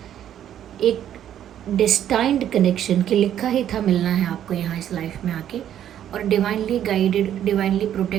एक डेस्टाइंड कनेक्शन कि लिखा ही था मिलना है आपको यहाँ इस लाइफ में आके, और डिवाइनली गाइडेड, डिवाइनली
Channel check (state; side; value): quieter; left; 10.6 dB